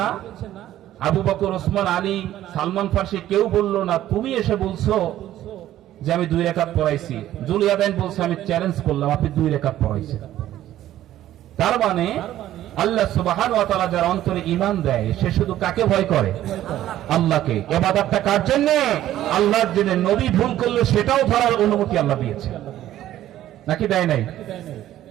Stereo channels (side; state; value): left; quieter; 13.1 dB